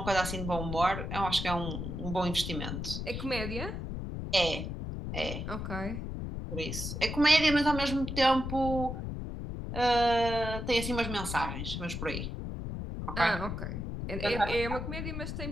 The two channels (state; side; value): noise; left; rumble, 5 dB below the sound